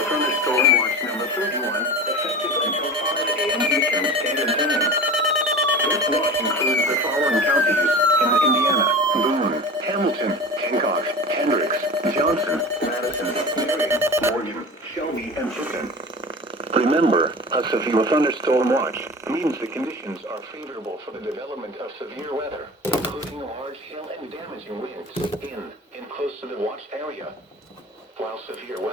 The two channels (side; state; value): both; normal; correlation 0.33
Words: thunderstorm watch number 31, effective until 5 a.m. Eastern Standard Time. This watch includes the following counties in Indiana: Boone, Hamilton, Hancock, Hendricks, Johnson, Madison, Marion, Morgan, Shelby, and Fulton. Remember, a severe thunderstorm watch means the conditions are favorable for the development of severe weather, including large hail and damaging winds in and close to the watched area. While severe